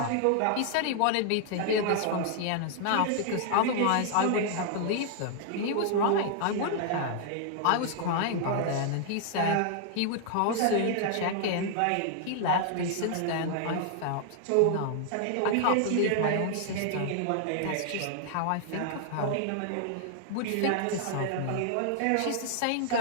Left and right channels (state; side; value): different; both; correlation -0.01